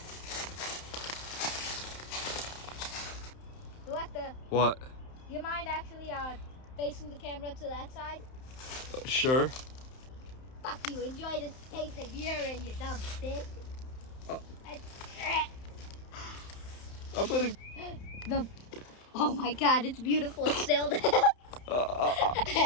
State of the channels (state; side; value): late; right; 31 ms